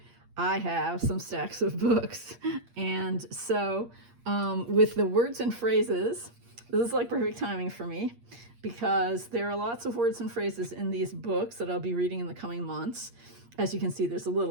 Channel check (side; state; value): left; late; 8.5 ms